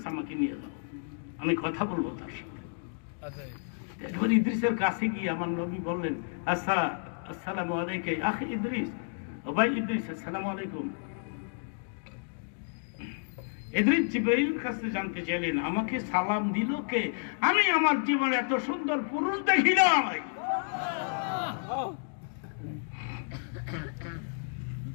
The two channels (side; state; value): right; silent; digital silence